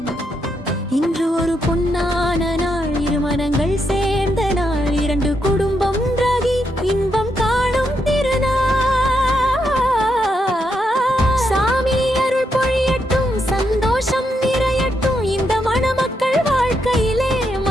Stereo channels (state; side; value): normal; both; correlation 0.80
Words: இன்று ஒரு பொன்னான நாள், இரு மனங்கள் சேர்ந்த நாள், இரண்டு குடும்பம் ஒன்றாகி இன்பம் காணும் திருநாள். சாமி அருள் பொழியட்டும், சந்தோஷம் நிறையட்டும், இந்த மணமக்கள் வாழ்க்கையிலே